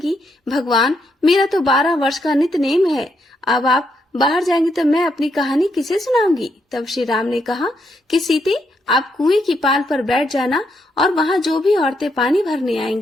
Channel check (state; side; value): normal; both; correlation 0.78